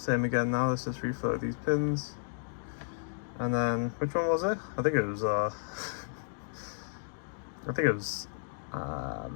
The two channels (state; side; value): silent; right; digital silence